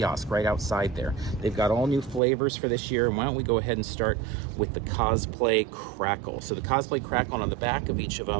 right outside there. They've got all new flavors for this year. And why don't we go ahead and start with the Cosplay Crackle. So the Cosplay Crackle, on the back of each of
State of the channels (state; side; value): drops out; left; at 2.2 s